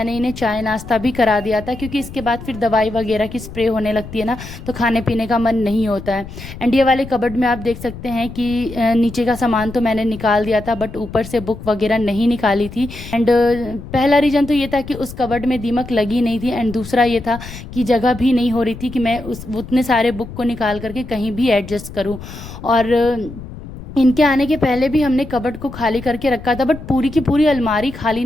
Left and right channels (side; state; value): left; noise; rumble, 13 dB below the sound